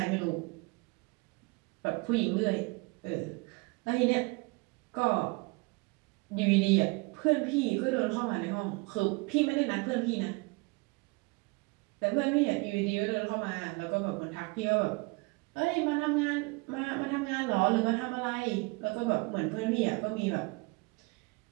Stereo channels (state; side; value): quieter; left; 27.5 dB